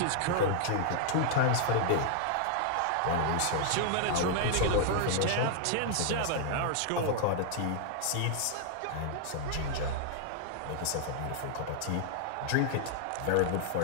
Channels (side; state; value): both; different; correlation 0.00